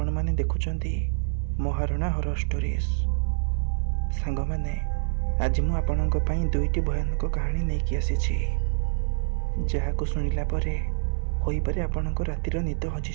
मैंने देखुंट महारणा हॉरर स्टोरीज सांग मैंने आज मु आपणों दुईटी भयानक कहानी नहीं आसी जहाँ को शुणिला परे होई पारे आपणों रातिर निद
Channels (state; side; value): silent; left; 61 dB below the other